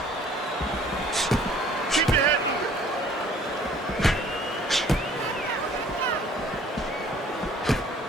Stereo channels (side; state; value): both; normal; correlation 0.55